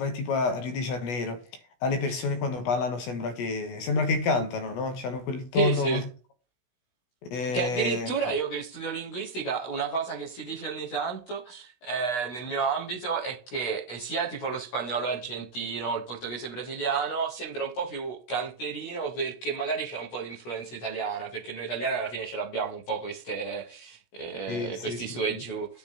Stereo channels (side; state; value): right; late; 16 ms